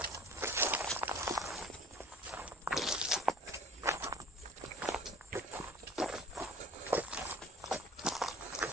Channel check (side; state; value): both; normal; correlation 0.46